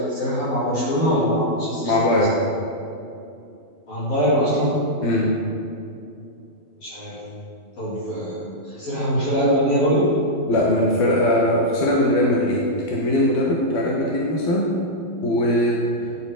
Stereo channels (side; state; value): right; late; 12 ms